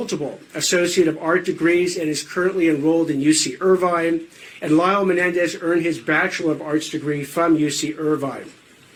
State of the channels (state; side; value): identical; both; correlation 1.00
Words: Associate of Art degrees and is currently enrolled in UC Irvine. And Lyle Menendez earned his Bachelor of Arts degree from UC Irvine.